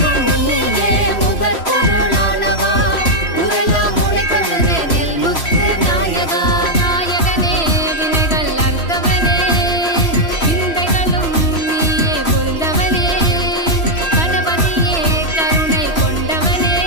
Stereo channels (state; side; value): late; right; 3.1 ms